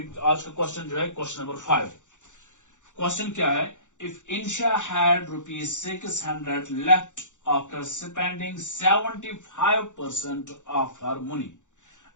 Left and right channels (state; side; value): late; right; 0.85 ms